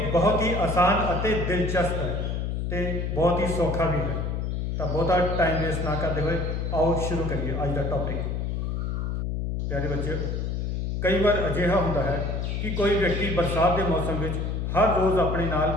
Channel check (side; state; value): left; noise; hum, 1 dB below the sound